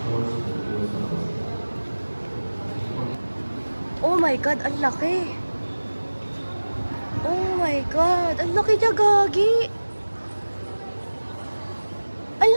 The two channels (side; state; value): both; inverted; correlation -1.00